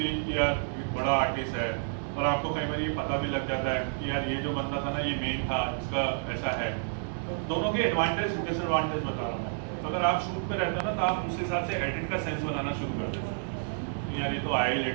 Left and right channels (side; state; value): left; silent; digital silence